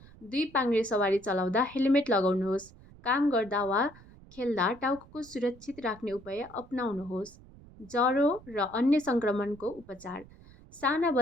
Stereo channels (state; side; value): noise; right; rumble, 22 dB below the sound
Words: 2 पाङ्ग्रे सवारी चलाउँदा हेलमेट लगाउनुहोस्। काम गर्दा वा खेल्दा टाउको सुरक्षित राख्ने उपाय अपनाउनुहोस्। ज्वरो र अन्य सङ्क्रमणको उपचार साना